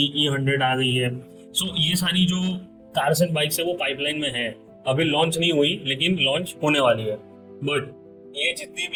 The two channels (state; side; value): identical; both; correlation 1.00